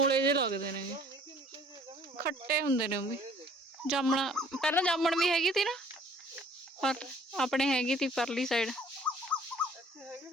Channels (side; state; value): both; normal; correlation 0.55